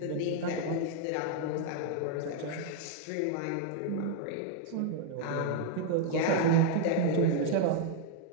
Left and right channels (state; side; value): different; both; correlation 0.00